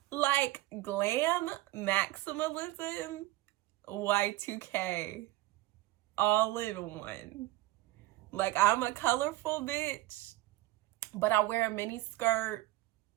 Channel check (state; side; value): quieter; left; 17.9 dB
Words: Like glam maximalism, Y2K, all in one. Like, I'm a colorful bitch, but I wear a mini skirt.